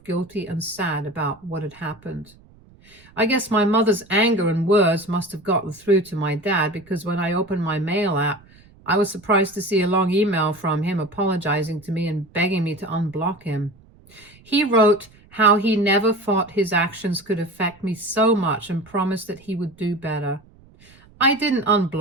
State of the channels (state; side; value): noise; right; rumble, 27 dB below the sound